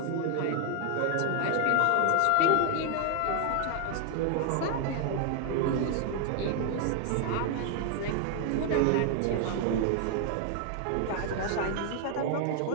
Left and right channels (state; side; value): different; both; correlation 0.00